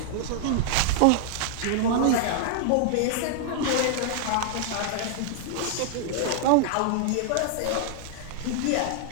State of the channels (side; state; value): both; different; correlation -0.01